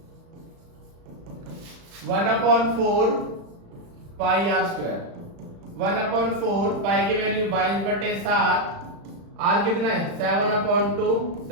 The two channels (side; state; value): left; late; 35 ms